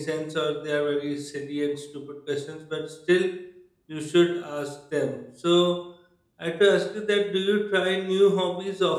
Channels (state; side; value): identical; both; correlation 1.00